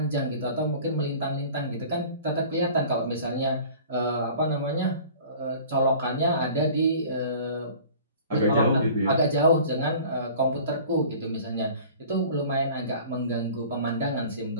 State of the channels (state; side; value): inverted; both; correlation -0.45